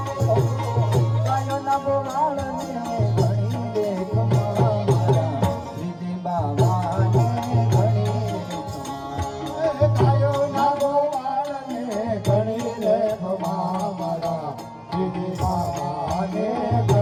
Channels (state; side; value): identical; both; correlation 1.00